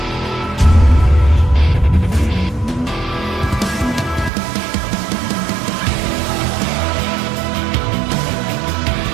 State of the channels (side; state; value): left; drops out; at 4.3 s